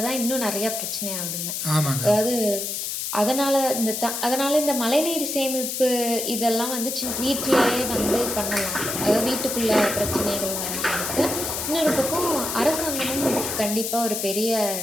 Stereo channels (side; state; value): left; noise; hiss, 3 dB below the sound